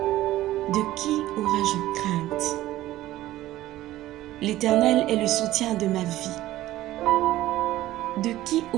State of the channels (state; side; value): quieter; left; 15.3 dB